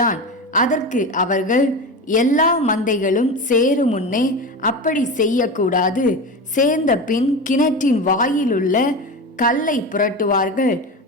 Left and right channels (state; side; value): normal; both; correlation 0.24